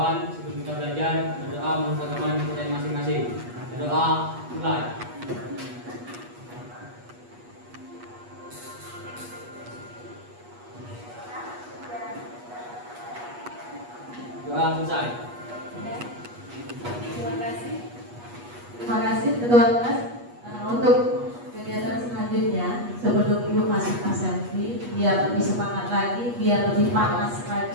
sebelum kita belajar berdoa menurut agama kita masing-masing. Berdoa mulai. Doa selesai. Terima kasih Ketua Kelas. Untuk kegiatan selanjutnya, sebelum Ibu masuk selfie, biar lebih semangat lagi, biar lebih panas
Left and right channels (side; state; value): left; late; 8.3 ms